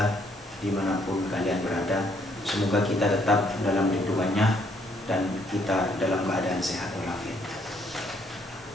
dimanapun kalian berada, semoga kita tetap dalam lindungannya dan kita dalam keadaan sehat walafiat.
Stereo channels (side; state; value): both; normal; correlation 0.69